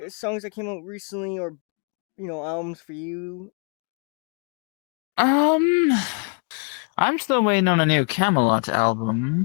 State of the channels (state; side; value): quieter; right; 38.7 dB